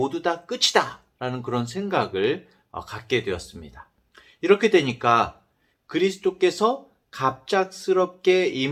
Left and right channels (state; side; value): identical; both; correlation 1.00